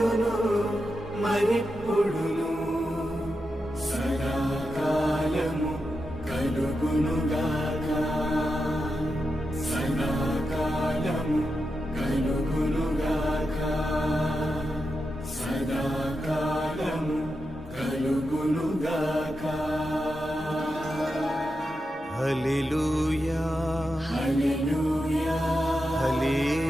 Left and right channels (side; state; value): both; normal; correlation 0.88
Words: మరెప్పుడును సదాకాలము కలుగునుగాక. సదాకాలము కలుగునుగాక. సదాకాలము కలుగునుగాక. హల్లెలూయా హల్లెలూయా